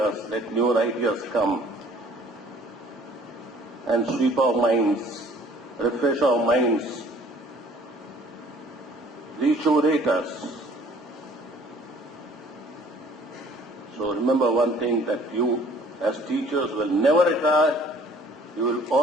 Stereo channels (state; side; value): normal; both; correlation 0.54